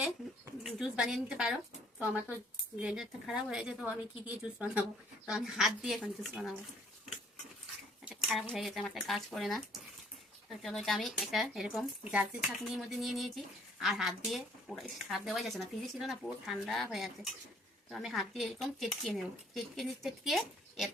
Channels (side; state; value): both; normal; correlation 0.61